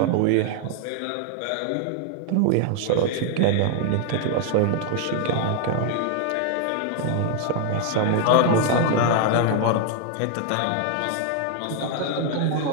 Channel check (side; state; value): both; different; correlation 0.00